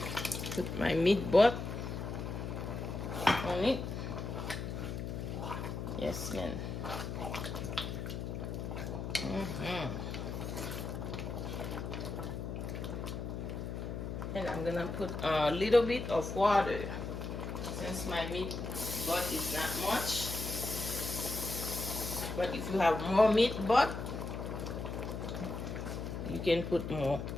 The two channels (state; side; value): noise; left; hum, 5 dB below the sound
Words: put my meat butt on it. Yes, man. And I'm gonna put a little bit of water since my meat butt is not much. But if you have more meat butt, you can put more.